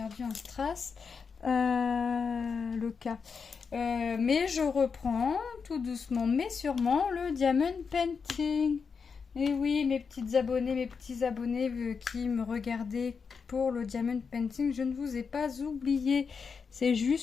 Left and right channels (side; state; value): right; quieter; 5.6 dB